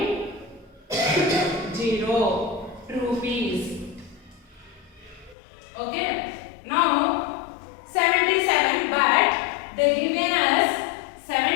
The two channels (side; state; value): right; drops out; at 5.4 s